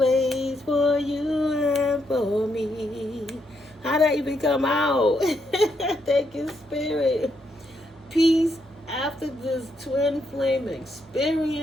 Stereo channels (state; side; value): normal; both; correlation 0.78